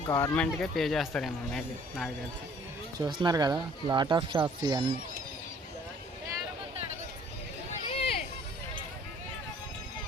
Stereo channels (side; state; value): both; normal; correlation 0.56